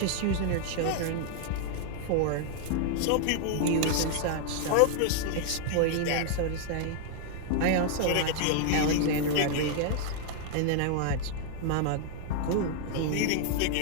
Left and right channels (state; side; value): different; both; correlation 0.00